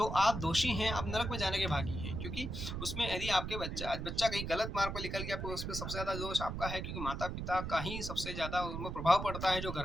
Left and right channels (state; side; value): noise; right; rumble, 5 dB below the sound